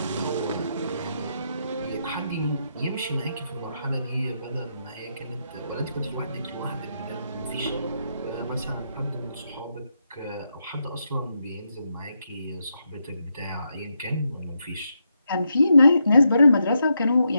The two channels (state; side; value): inverted; both; correlation -0.82